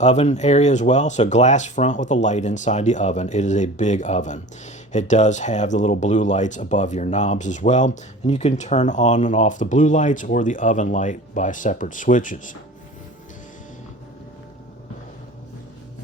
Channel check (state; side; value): normal; both; correlation 0.39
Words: area as well. So glass front with a light inside the oven. It is a big oven. It does have the little blue lights above your knobs as well. And you can turn on and off the blue lights or the oven light by separate switches.